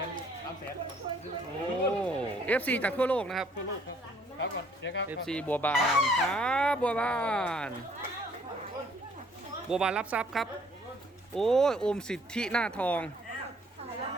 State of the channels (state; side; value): normal; both; correlation 0.62